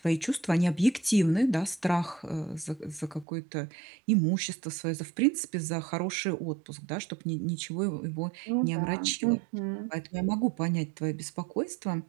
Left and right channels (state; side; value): drops out; left; at 3.2 s